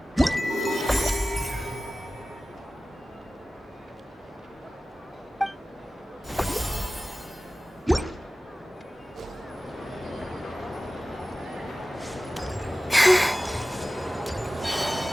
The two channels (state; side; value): normal; both; correlation 0.96